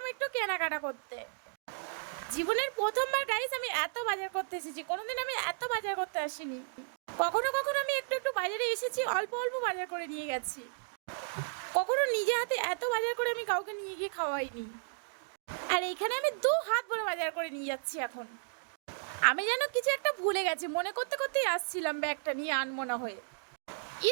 একটু কেনাকাটা করতে। জীবনের প্রথমবার গাইস আমি এত বাজার করতে এসেছি, কোনোদিন আমি এত বাজার করতে আসিনি। কখনো কখনো আমি একটু একটু বাজারে এসেছি, অল্প অল্প বাজার করে নিয়ে গেছি। কখনো নিজে হাতে এত বাজার করে আমি কাউকে নিয়ে গিয়ে খাওয়াইনি। আর এখানে আমি 2 হাত ভরে বাজার করে নিয়ে যাচ্ছি এখন। আমি যেন কিছু একটা ভুলে গেছি, মনে করতে করতেই আসছিলাম ব্যাগটা নিয়ে আনমনা হয়ে।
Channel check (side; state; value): left; silent; digital silence